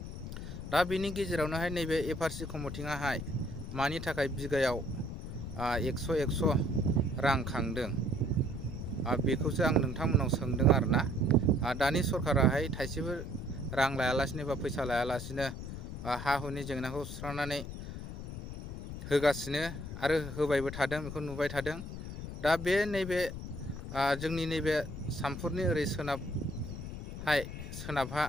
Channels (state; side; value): noise; left; rumble, 8 dB below the sound